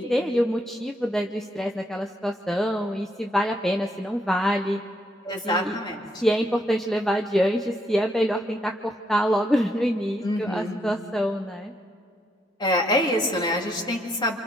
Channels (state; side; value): normal; both; correlation 0.75